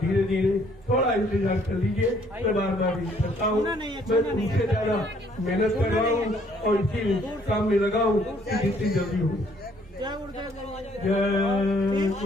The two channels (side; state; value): both; normal; correlation 0.64